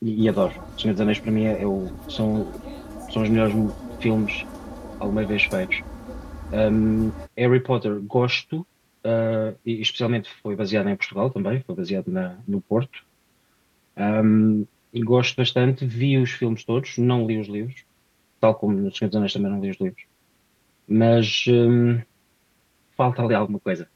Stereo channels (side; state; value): both; identical; correlation 1.00